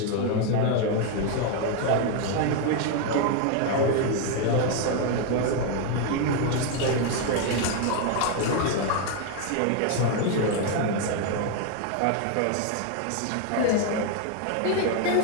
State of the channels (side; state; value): both; different; correlation 0.01